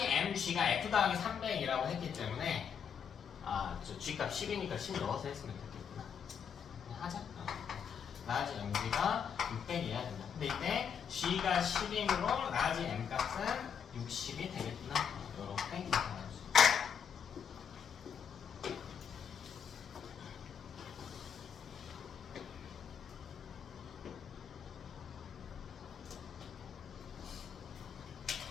MG가 F 더하기 300이라고 했기 때문에 저 G값 10이니까 10 넣어서 했으면 됐겠구나. 하자. 라지 MG가 600이어야 된다. 근데 이때 G가 10이므로 라지 M 값은 60이 되겠구나. 이렇게 계산할 수 있다.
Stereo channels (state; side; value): quieter; right; 7.5 dB